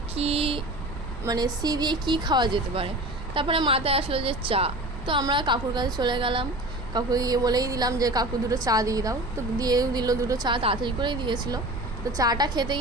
কি মানে সি দিয়ে কি খাওয়া যেতে পারে। তারপরে মাথায় আসলো যে চা। তো আমরা কাকুর কাছে চলে গেলাম, কাকুকে গিয়ে বলেই দিলাম যে কাকু দুটো চা দিয়ে দাও। তো দিয়েও দিল, দুটো চা তাড়াতাড়ি করেই দিয়েছিল। তো চাটা খেতে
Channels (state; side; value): noise; right; rumble, 9 dB below the sound